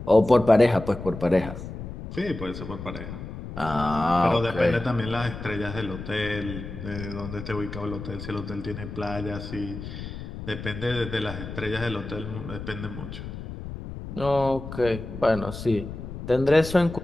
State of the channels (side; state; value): left; noise; rumble, 9 dB below the sound